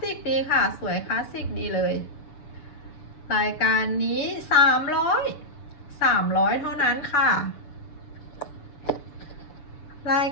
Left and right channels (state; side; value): late; right; 6.9 ms